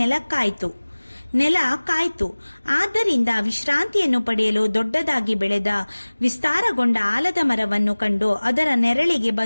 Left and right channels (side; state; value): both; inverted; correlation -1.00